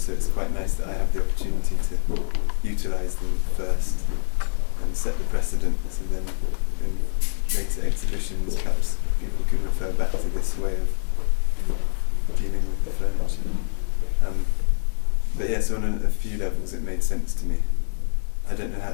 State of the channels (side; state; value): right; silent; digital silence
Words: so it's quite nice that I have the opportunity to utilise them first and set the precedent, so then in later exhibitions perhaps people can refer back to this way of dealing with the furniture. But yeah, so on a few levels it made sense to me. I don't know how